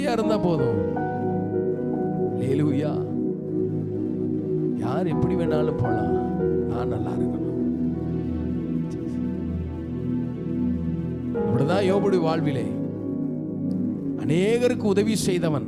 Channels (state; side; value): identical; both; correlation 1.00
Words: இருந்தா போதும். ஹல்லேலூயா. யார் எப்படி வேணாலும் போலாம், நான் நல்லா இருக்கணும். அப்படிதான் யோபுடைய வாழ்விலே அநேகருக்கு உதவி செய்தவன்,